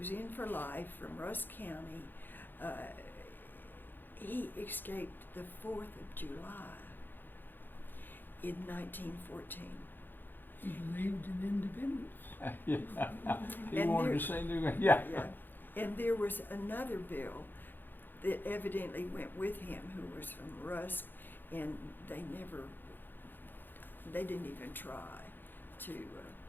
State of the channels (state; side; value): late; right; 0.092 ms